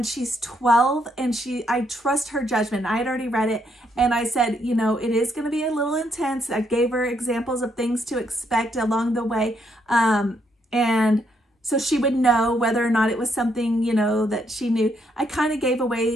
she's 12, and I trust her judgment. I had already read it, and I said, you know, it is going to be a little intense. I gave her examples of things to expect along the way. And so she would know whether or not it was something, you know, that she knew. I kind of gave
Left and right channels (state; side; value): normal; both; correlation 0.75